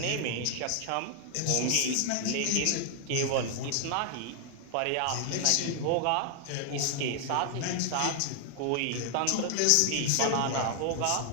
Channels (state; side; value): different; both; correlation 0.00